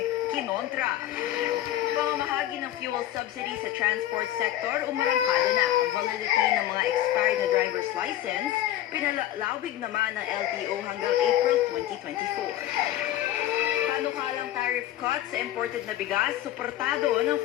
kinontra. Pamamahagi ng fuel subsidy sa transport sector, umarangkada na. Validity ng mga expired na driver's license, pinalalawig naman ng LTO hanggang April 2024. Panukalang tariff cuts sa imported na bigas, suportado ng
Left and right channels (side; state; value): right; quieter; 13.2 dB